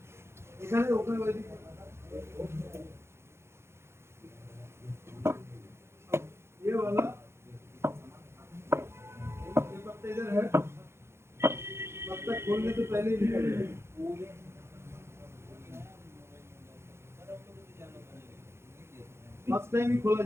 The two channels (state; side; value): late; left; 0.12 ms